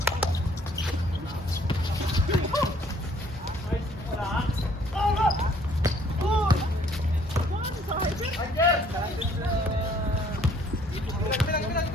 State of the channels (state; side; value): normal; both; correlation 0.60